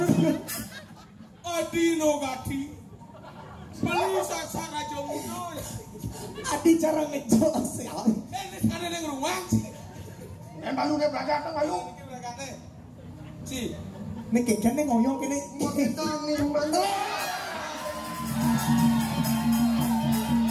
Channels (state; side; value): identical; both; correlation 1.00